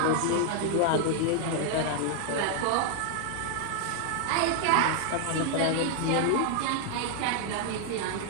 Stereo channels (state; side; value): different; both; correlation 0.00